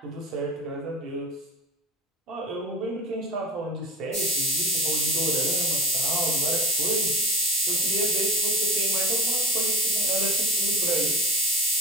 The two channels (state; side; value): normal; both; correlation 0.34